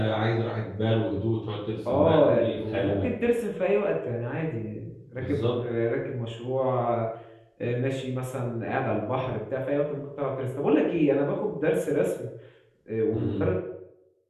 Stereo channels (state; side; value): identical; both; correlation 1.00